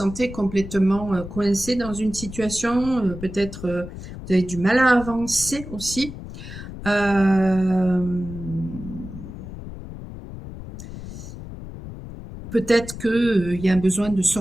complètement coincé dans une situation, peut-être vous avez du mal à avancer aussi. Peut-être qu'il y a un besoin de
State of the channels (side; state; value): left; noise; rumble, 11 dB below the sound